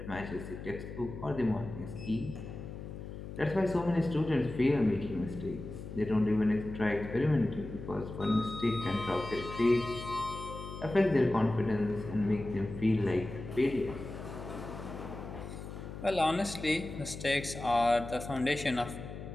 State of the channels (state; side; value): noise; left; hum, 10 dB below the sound